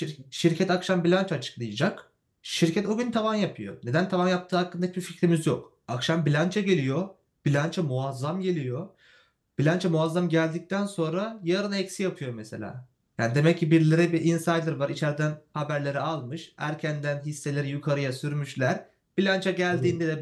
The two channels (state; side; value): identical; both; correlation 1.00